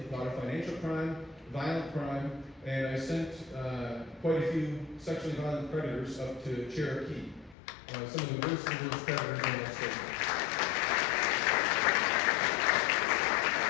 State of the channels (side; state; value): right; drops out; at 7.6 s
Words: a lot of financial crime, violent crime, and I sent quite a few sexually violent predators up to Cherokee, some of the worst predators in that state.